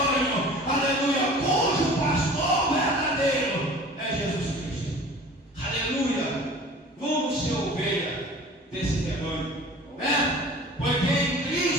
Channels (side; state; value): both; normal; correlation 0.44